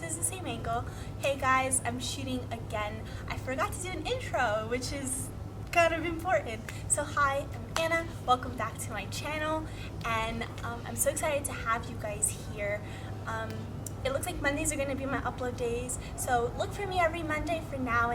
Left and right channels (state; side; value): identical; both; correlation 1.00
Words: is the same angle. Hey guys, I'm shooting again. I forgot to do an intro, which is kind of important. So hi, I'm Anna. Welcome back to my channel, and I'm so excited to have you guys here. It looks like Mondays are going to be my upload days, so look for me every Monday for now